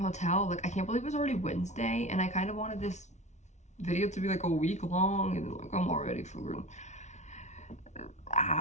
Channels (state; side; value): late; right; 0.33 ms